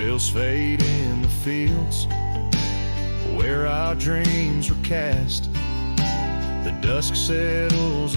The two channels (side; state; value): both; inverted; correlation -1.00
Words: fade in the fields where our dreams were cast. The dusk settles